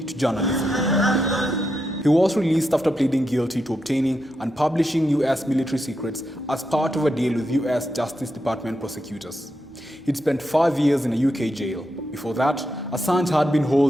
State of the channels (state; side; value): normal; both; correlation 0.85